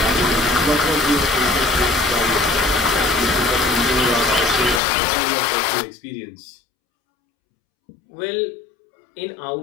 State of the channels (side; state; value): right; drops out; at 4.8 s